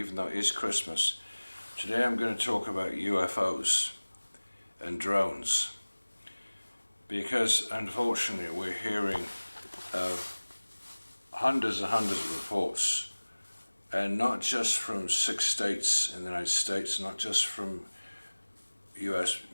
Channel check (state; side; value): inverted; both; correlation -1.00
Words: though it is Christmas, today I'm going to talk about UFOs and drones, because unfortunately we're hearing of hundreds and hundreds of reports, and not just from 6 states in the United States, not just from US